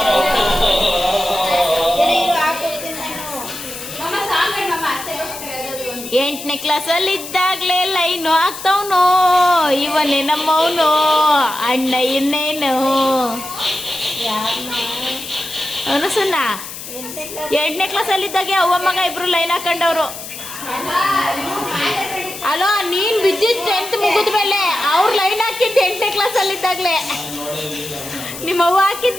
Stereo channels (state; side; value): noise; left; hiss, 11 dB below the sound